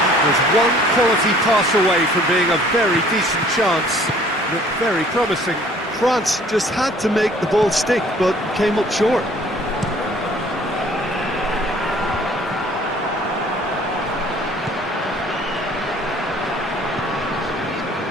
That was one quality pass away from being a very decent chance. Looked very promising. France just had to make the ball stick, but came up short.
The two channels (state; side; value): normal; both; correlation 0.55